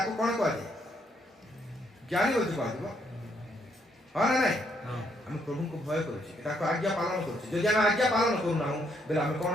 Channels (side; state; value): both; normal; correlation 0.73